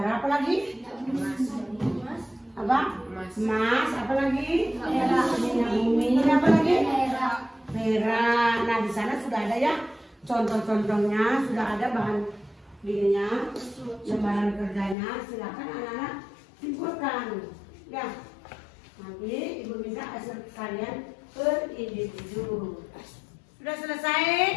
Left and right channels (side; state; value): right; drops out; at 15.0 s